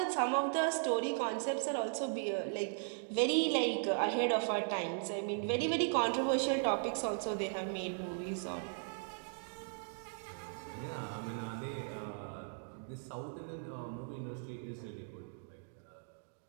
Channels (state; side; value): silent; left; digital silence